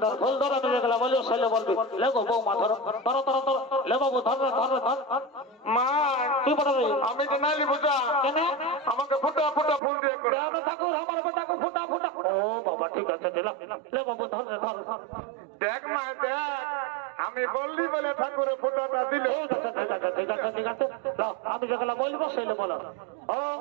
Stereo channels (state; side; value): drops out; left; at 9.8 s